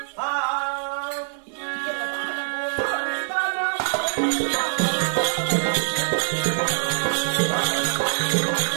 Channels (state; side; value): silent; left; 63 dB below the other